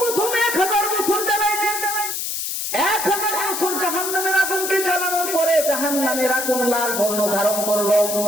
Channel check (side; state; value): left; noise; hiss, 3 dB below the sound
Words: 1000 বছর জ্বালাইলেন। 1000 বছর জাহান্নামের আগুনকে জ্বালানোর পরে জাহান্নামের আগুন লাল বর্ণ ধারণ করলো।